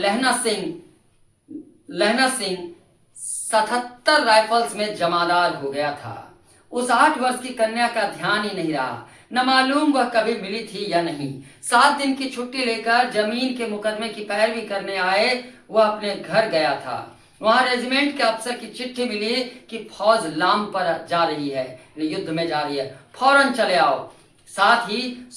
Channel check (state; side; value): identical; both; correlation 1.00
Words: सिंह 77 राइफल्स में जमादार हो गया था। उस 8 वर्ष की कन्या का ध्यान ही नहीं रहा, न मालूम वह कभी मिली थी या नहीं। 7 दिन की छुट्टी लेकर जमीन के मुकदमे की पैरवी करने आए वह अपने घर गया था। वहां रेजिमेंट के अफसर की चिट्ठी मिली कि फौज लाम पर जा रही है, युद्ध में जा रही है, फौरन चले आओ। साथ ही